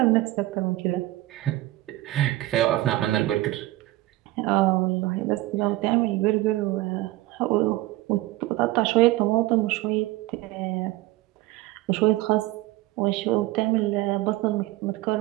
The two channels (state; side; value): quieter; left; 17.7 dB